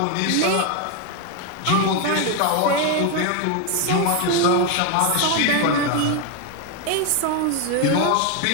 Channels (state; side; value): different; both; correlation 0.01